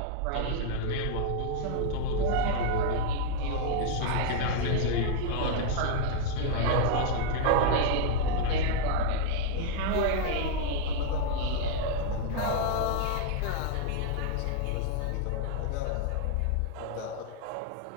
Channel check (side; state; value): both; different; correlation 0.00